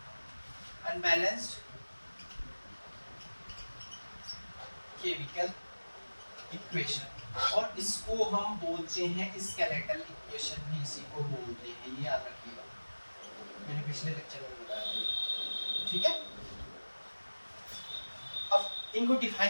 unbalanced chemical equation, और इसको हम बोलते हैं स्केलेटल इक्वेशन भी, इसी को बोलते हैं, ये याद रखिएगा, मैंने पिछले लेक्चर में बताया था, ठीक है। अब इनको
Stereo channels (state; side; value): inverted; both; correlation -1.00